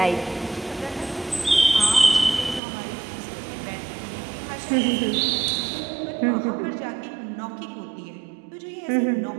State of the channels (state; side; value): drops out; left; at 2.6 s